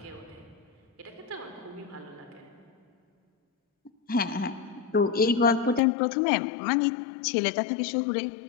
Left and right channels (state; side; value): drops out; right; at 5.8 s